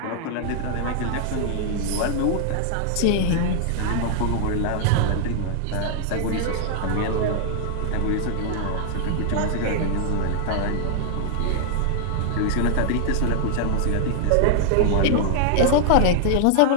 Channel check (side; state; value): both; different; correlation -0.01